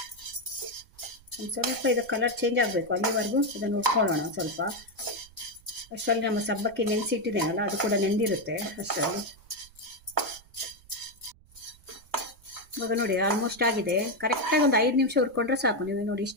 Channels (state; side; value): noise; right; rumble, 26 dB below the sound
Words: ಒಂದು ಸ್ವಲ್ಪ ಇದು ಕಲರ್ ಚೇಂಜ್ ಆಗಬೇಕು, ಅಲ್ಲಿವರೆಗೂ ಇದನ್ನು ಹುರ್ಕೊಳ್ಳೋಣ ಸ್ವಲ್ಪ. ಅಷ್ಟರಲ್ಲಿ ನಮ್ಮ ಸಬ್ಬಕ್ಕಿ ನೆನೆಸಿಟ್ಟಿದ್ದೇನಲ್ಲ, ಅದು ಕೂಡ ನೆಂದಿರುತ್ತೆ ಅಷ್ಟರಲ್ಲಿ. ಇವಾಗ ನೋಡಿ ಆಲ್ಮೋಸ್ಟ್ ಆಗಿದೆ. ಕರೆಕ್ಟಾಗಿ ಒಂದು 5 ನಿಮಿಷ ಹುರ್ಕೊಂಡ್ರೆ ಸಾಕು. ನೀವು ನೋಡಿ